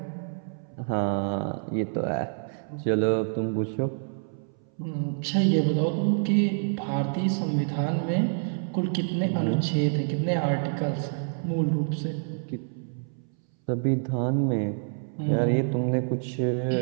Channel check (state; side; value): silent; left; 60 dB below the other